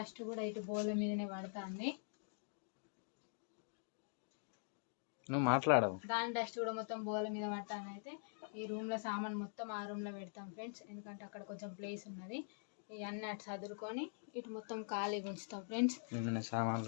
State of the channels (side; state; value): right; silent; digital silence